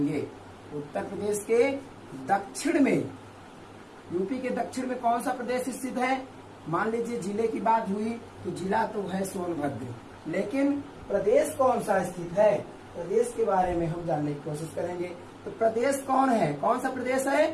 उत्तर प्रदेश के दक्षिण में, यूपी के दक्षिण में कौन सा प्रदेश स्थित है। मान लीजिए जिले की बात हुई तो जिला तो है सोनभद्र, लेकिन प्रदेश कौन सा स्थित है, प्रदेश के बारे में हम जानने की कोशिश करेंगे। तो प्रदेश कौन है, कौन सा प्रदेश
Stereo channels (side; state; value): both; identical; correlation 1.00